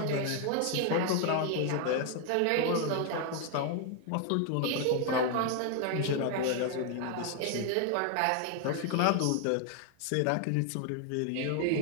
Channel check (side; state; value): both; different; correlation 0.01